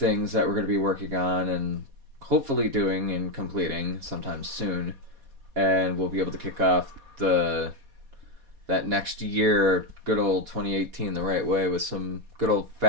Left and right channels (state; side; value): late; left; 4.2 ms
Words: that we're going to be working on and hopefully doing and completing sometime soon, and we'll be able to kick off that next year, good old 2018, the right way, with some good old